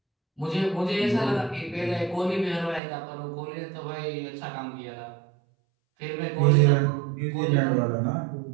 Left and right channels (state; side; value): drops out; left; at 2.8 s